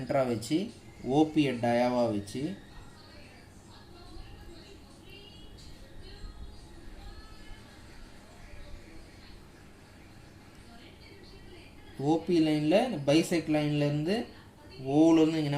வச்சு ஓபியை டயாவாக வச்சு ஓபி லைனில் பைசெக்ட் லைன்லேருந்து ஓலேருந்து நீங்கள்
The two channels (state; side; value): identical; both; correlation 1.00